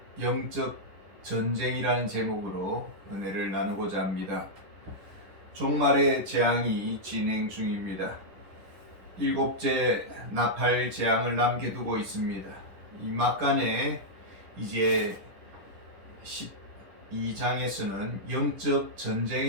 영적 전쟁이라는 제목으로 은혜를 나누고자 합니다. 종말의 재앙이 진행 중입니다. 7째 나팔 재앙을 남겨두고 있습니다. 이 막간에 이제 12장에서는 영적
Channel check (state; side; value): late; left; 10 ms